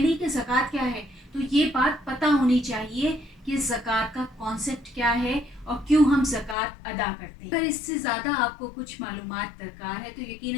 کہ زکوٰۃ کیا ہے تو یہ بات پتہ ہونی چاہیے کہ زکوٰۃ کا کانسیپٹ کیا ہے اور کیوں ہم زکوٰۃ ادا کرتے ہیں. اگر اس سے زیادہ آپ کو کچھ معلومات درکار ہے تو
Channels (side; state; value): right; drops out; at 6.6 s